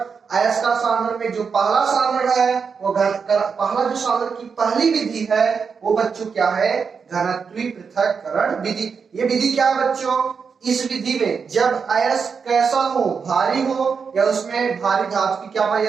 अयस्क का सांद्रण में जो पहला सांद्रण है वो पहला जो सांद्रण की पहली विधि है वो बच्चों क्या है, घनत्वी पृथक्करण विधि। ये विधि क्या है बच्चों, इस विधि में जब अयस्क कैसा हो, भारी हो, या उसमें भारी धातु की क्या पाई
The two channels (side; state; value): left; quieter; 5.8 dB